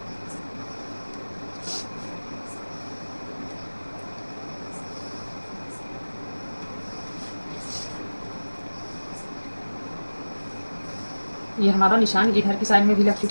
ये हमारा निशान इधर की साइड में भी लग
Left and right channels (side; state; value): both; inverted; correlation -1.00